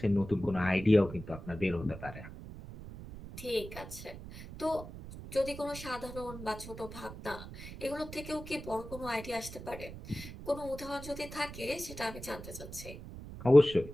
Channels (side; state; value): right; noise; rumble, 12 dB below the sound